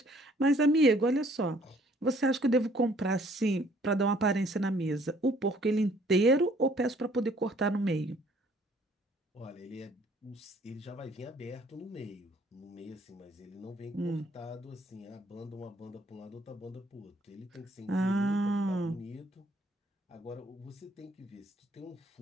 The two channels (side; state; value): both; normal; correlation 0.60